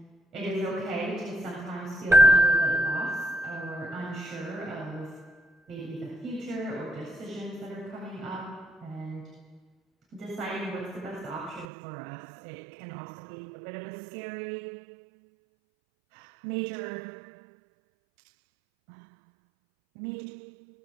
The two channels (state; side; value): drops out; left; at 11.7 s